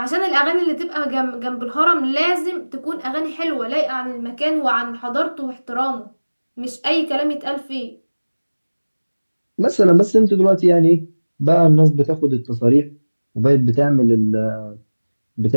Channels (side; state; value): both; inverted; correlation -1.00